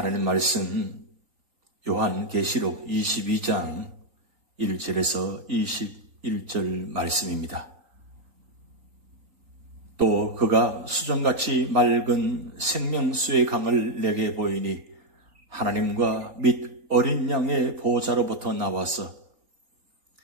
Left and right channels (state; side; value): late; left; 3.8 ms